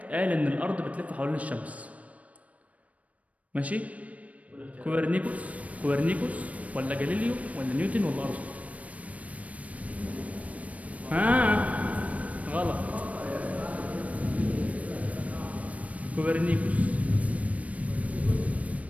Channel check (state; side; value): late; left; 0.067 ms